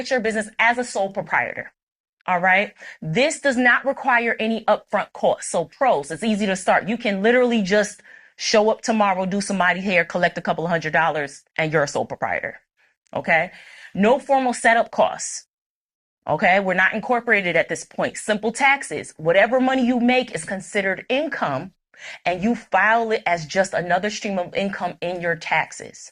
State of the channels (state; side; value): identical; both; correlation 1.00